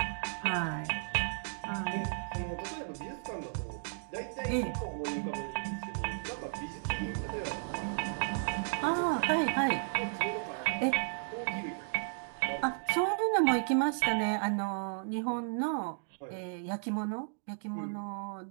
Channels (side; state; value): left; silent; digital silence